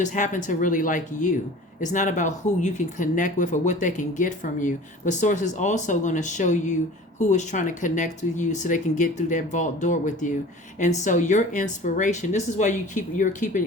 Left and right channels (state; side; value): normal; both; correlation 0.42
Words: happen to really like you. It's not about who you can connect with or what they can get from you. But Source is also going to show you who is trying to connect with you so they can get through that vault door with you. And so your inspiration, this is why